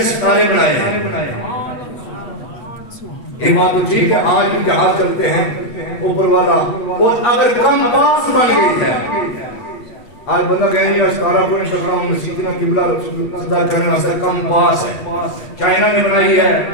ستارے بنائے ہیں۔ یہ بات تو ٹھیک ہے، آج بھی جہاز چلتے ہیں اوپر والا، اور اگر کم پاس بن گئی ہے، آج بندہ کہیں نہیں ستارہ کو نہیں ٹکرا ہوں مسیحنا قبلہ صدا کرنے واسطے کم پاس ہے۔ چائنا نے بنائی ہے،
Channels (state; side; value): late; right; 8.3 ms